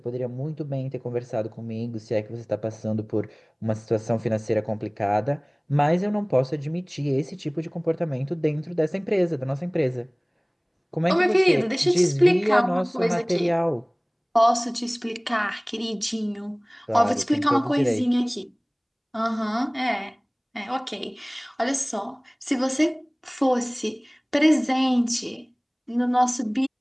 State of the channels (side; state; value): both; identical; correlation 1.00